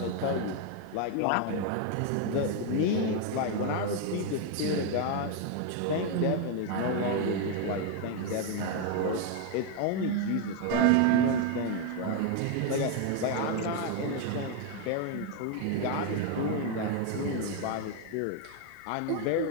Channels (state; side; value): different; both; correlation 0.01